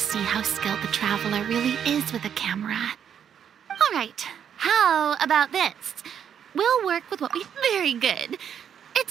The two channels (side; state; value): left; quieter; 8.5 dB